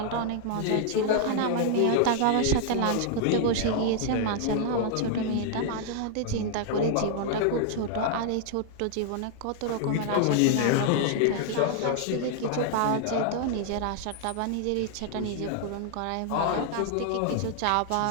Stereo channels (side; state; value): both; different; correlation -0.01